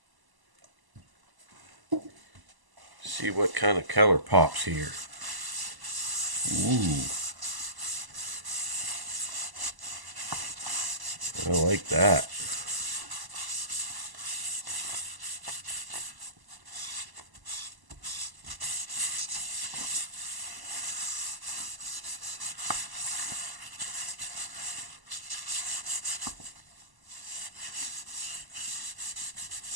See what kind of color pops here. Ooh, I like that.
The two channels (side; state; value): left; late; 1.0 ms